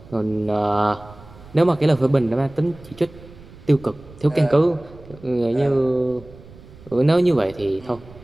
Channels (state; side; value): noise; right; rumble, 20 dB below the sound